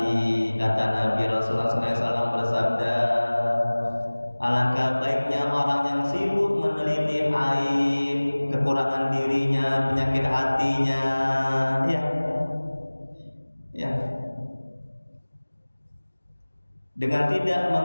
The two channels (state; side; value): inverted; both; correlation -1.00